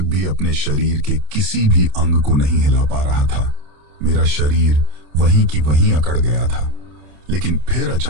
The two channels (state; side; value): late; left; 27 ms